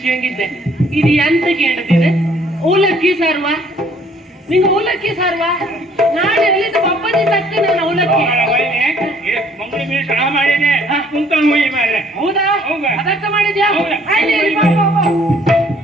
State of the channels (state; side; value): normal; both; correlation 0.60